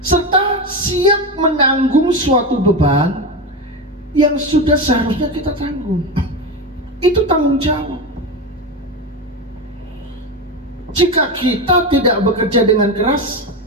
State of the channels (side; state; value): both; normal; correlation 0.17